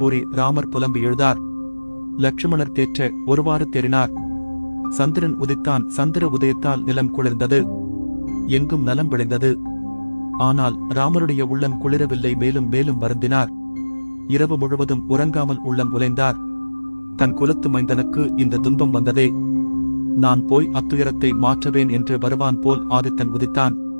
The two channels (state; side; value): inverted; both; correlation -1.00